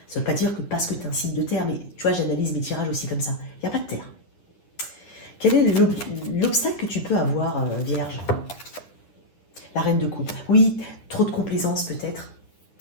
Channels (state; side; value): late; right; 9.9 ms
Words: Ça ne veut pas dire que parce que tu es un signe de terre, mais tu vois, j'analyse mes tirages aussi comme ça. Il n'y a pas de terre. Quel est l'obstacle que tu peux avoir, Vierge? La reine de coupe. Oui, trop de complaisance peut-être,